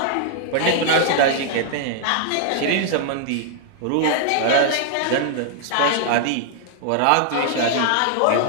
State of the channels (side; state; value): both; different; correlation 0.00